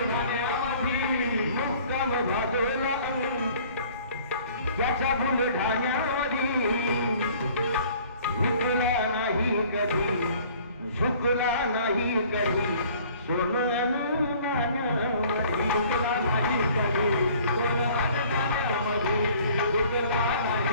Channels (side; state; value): both; inverted; correlation -0.53